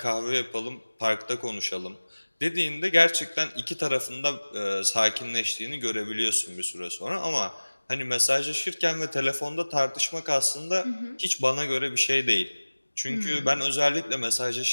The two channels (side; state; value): both; inverted; correlation -1.00